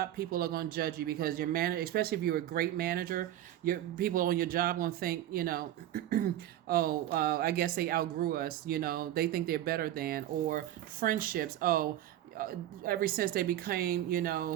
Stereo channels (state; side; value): quieter; left; 12.8 dB